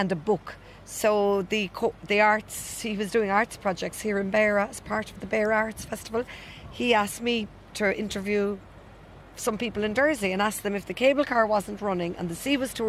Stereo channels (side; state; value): both; identical; correlation 1.00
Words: a book. So the arts, he was doing arts projects here in Beara as part of the Beara Arts Festival. He asked me to interview some people in Dursey and asked them if the cable car wasn't running and the sea was too